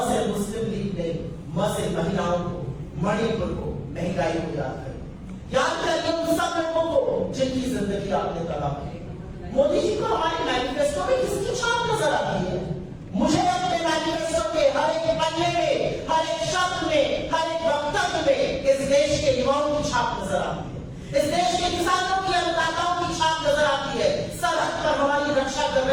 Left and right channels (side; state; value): both; identical; correlation 1.00